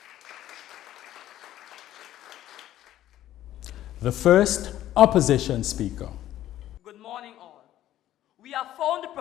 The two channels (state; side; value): quieter; right; 13.1 dB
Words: you. The first opposition speaker. Good morning, all. We have found the